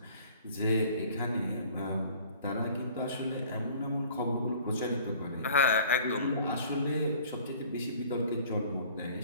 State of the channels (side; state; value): both; inverted; correlation -0.50